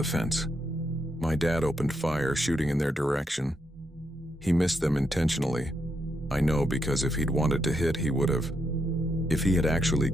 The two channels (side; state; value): both; normal; correlation 0.80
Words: fence. My dad opened fire, shooting in their direction. He missed them intentionally. I know, because if he'd wanted to hit, he would have. If he had actually